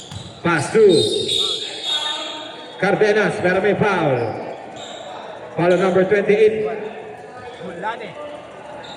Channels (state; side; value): identical; both; correlation 1.00